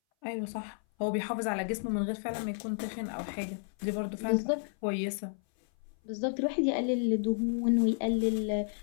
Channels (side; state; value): right; silent; 57 dB below the other